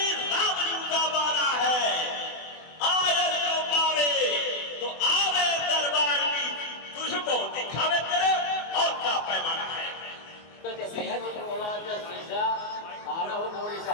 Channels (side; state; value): right; late; 24 ms